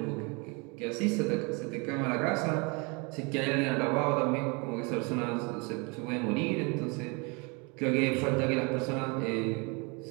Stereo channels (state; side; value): quieter; left; 30.3 dB